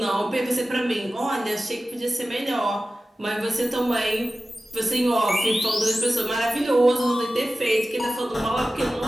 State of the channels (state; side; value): normal; both; correlation 0.95